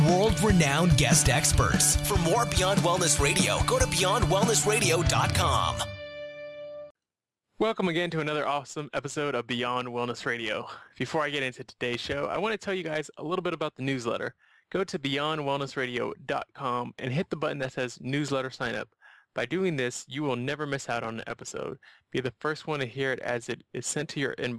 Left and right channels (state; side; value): identical; both; correlation 1.00